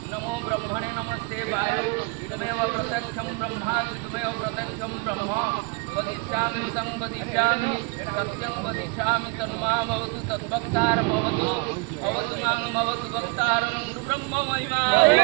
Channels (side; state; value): left; quieter; 28.7 dB